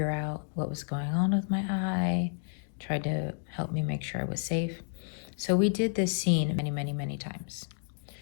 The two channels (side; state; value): right; silent; digital silence